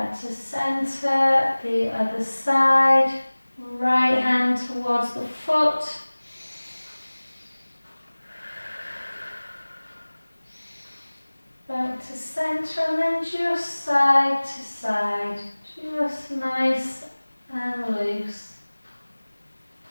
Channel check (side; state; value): both; inverted; correlation -1.00